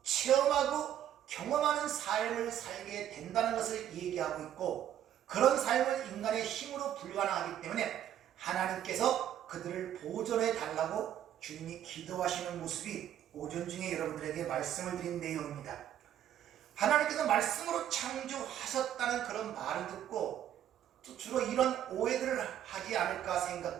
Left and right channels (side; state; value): left; quieter; 10.9 dB